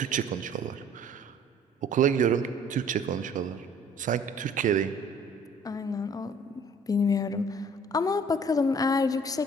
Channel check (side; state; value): both; normal; correlation 0.54